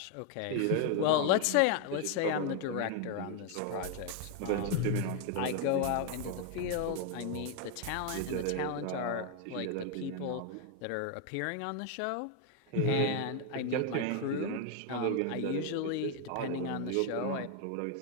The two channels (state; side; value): different; both; correlation 0.01